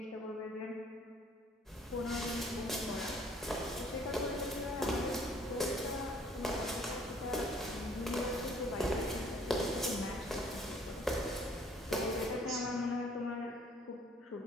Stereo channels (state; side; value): normal; both; correlation 0.58